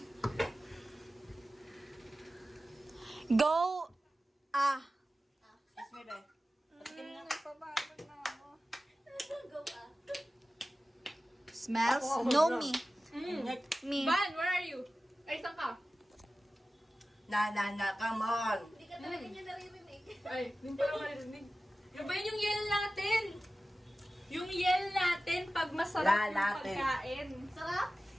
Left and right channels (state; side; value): normal; both; correlation 0.95